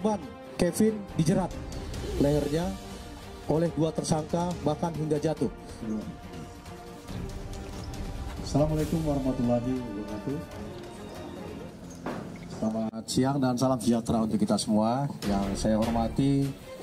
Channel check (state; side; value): identical; both; correlation 1.00